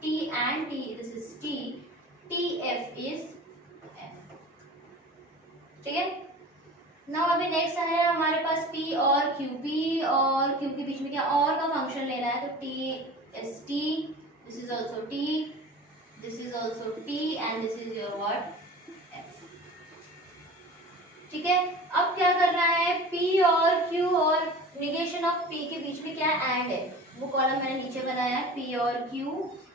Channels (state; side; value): normal; both; correlation 0.38